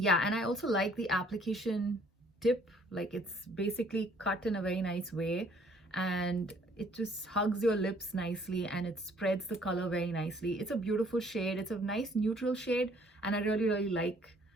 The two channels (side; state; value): both; normal; correlation 0.60